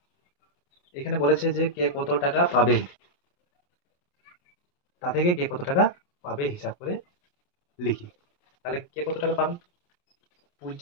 এখানে বলেছে যে কে কত টাকা পাবে, তা থেকে কে কত টাকা পাবে হিসাব করে লিখি। তাহলে কে কত টাকা পাবে,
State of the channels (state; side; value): late; right; 28 ms